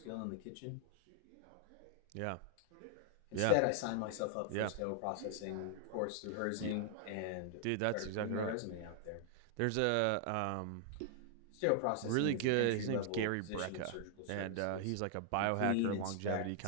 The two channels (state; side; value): different; both; correlation -0.01